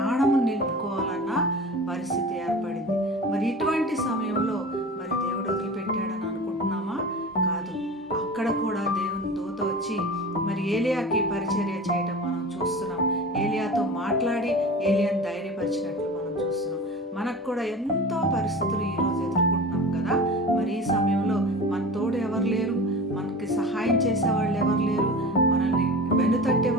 నిలుపుకోవాలన్న పరిస్థితి ఏర్పడింది. మరి ఇటువంటి సమయంలో మరి దేవుడు వదిలిపెట్టాడని అనుకుంటున్నామా? కాదు. అక్కడ కూడా దేవుని దూత వచ్చి మరి ఏలియాకి పరిచర్య చేయడం మనం చూస్తున్నాం. ఏలియాతో మాట్లాడి ఏలియాని ధైర్యపరిచినట్లు మనం చూస్తున్నాం. మనకు కూడా ఎంతో పరిస్థితులు ఈరోజు ఎదుర్కొంటున్నాం కదా. మరి ఈ సమయంలో మన తోడు ఎవరు లేరు, మనకి సహాయం చేసేవాళ్ళు ఎవరు లేరు, మనల్ని వెనుతట్టే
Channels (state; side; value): normal; both; correlation 0.35